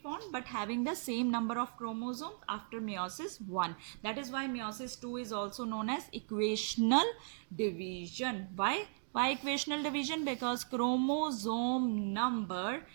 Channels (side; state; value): left; silent; digital silence